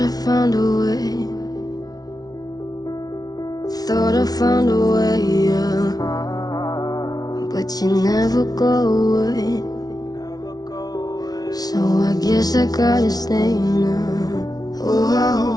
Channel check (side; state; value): right; late; 0.19 ms